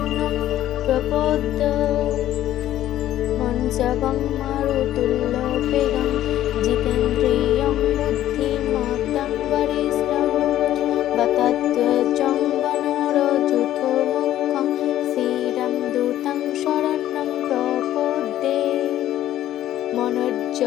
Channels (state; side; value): quieter; right; 12.9 dB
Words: প্রপদ্যে। মঞ্জবং মারুতুল্যবেগং জিতেন্দ্রিয়ং বুদ্ধিমত্তং বরিষ্ঠং বতধ্বজং বনরযুথমুখং শ্রীরাম দূতং শরণ্যং প্রপদ্যে।